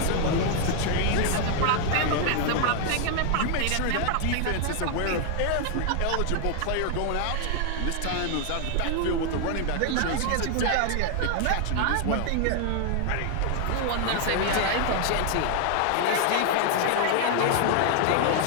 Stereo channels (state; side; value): different; both; correlation 0.00